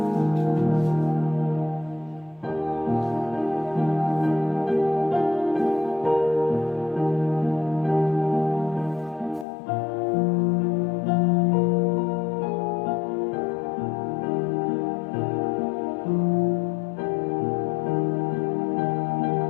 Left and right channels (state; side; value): drops out; right; at 9.5 s